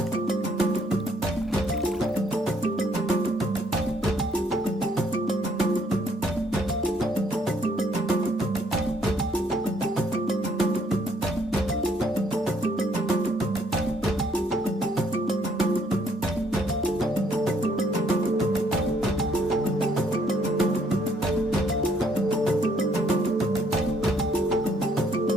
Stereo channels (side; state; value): both; normal; correlation 0.67